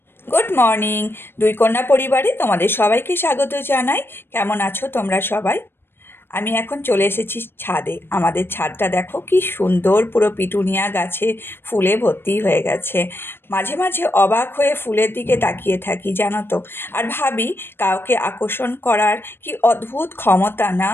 Good morning. দুই কন্যা পরিবারে তোমাদের সবাইকে স্বাগত জানাই। কেমন আছো তোমরা সবাই? আমি এখন চলে এসেছি ছাদে। আমাদের ছাদটা দেখো কি সুন্দর, পুরো পিটুনিয়া গাছে ফুলে ভর্তি হয়ে গেছে। মাঝে মাঝে অবাক হয়ে ফুলের দিকে তাকিয়ে থাকি জানো তো, আর ভাবি কাউকে আকর্ষণ করার কি অদ্ভুত ক্ষমতা না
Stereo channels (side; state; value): right; late; 0.10 ms